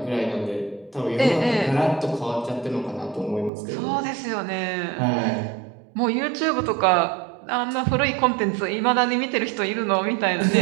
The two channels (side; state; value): left; drops out; at 3.5 s